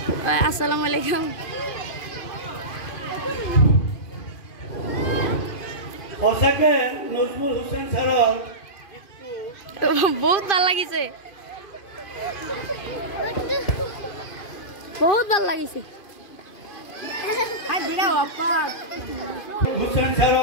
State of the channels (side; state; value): right; late; 2.5 ms